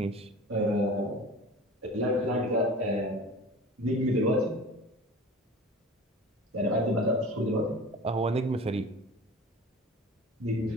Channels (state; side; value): normal; both; correlation 0.38